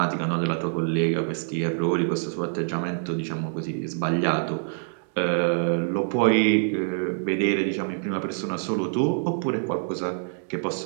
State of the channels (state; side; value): silent; left; digital silence